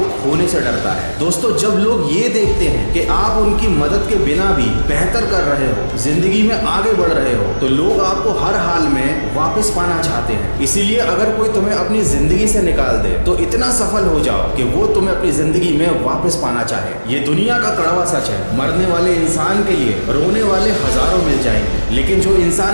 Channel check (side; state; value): both; inverted; correlation -1.00